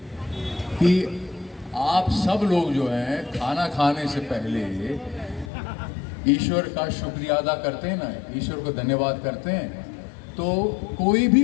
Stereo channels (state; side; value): drops out; right; at 5.5 s